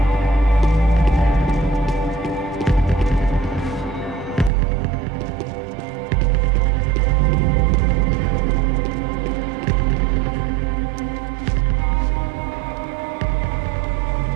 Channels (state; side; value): drops out; left; at 4.5 s